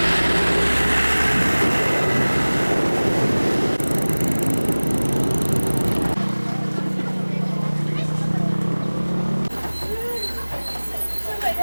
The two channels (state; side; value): inverted; both; correlation -1.00